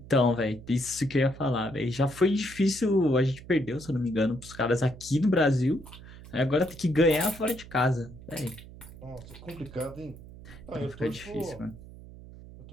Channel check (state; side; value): noise; right; hum, 17 dB below the sound